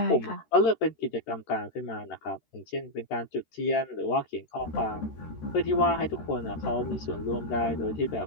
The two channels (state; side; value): late; right; 13 ms